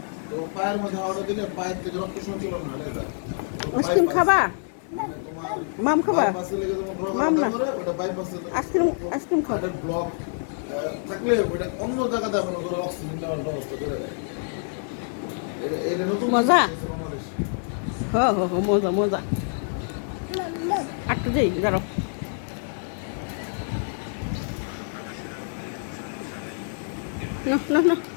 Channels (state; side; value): silent; right; 61 dB below the other